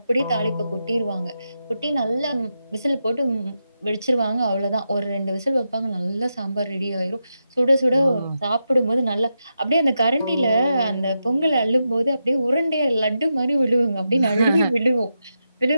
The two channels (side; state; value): both; inverted; correlation -0.86